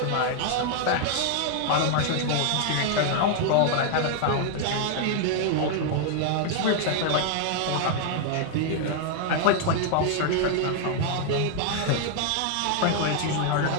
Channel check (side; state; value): both; different; correlation 0.00